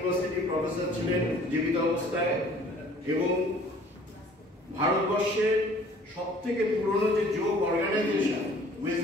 প্রফেসর ছিলেন জীবিত অবস্থায় এবং ভারতবর্ষের সবথেকে পুরনো যে যোগ অর্গানাইজেশন ওয়েস্ট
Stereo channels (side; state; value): both; normal; correlation 0.53